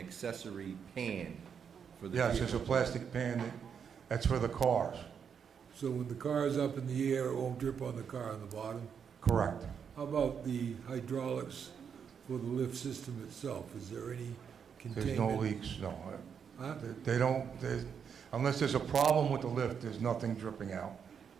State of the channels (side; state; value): left; quieter; 7.1 dB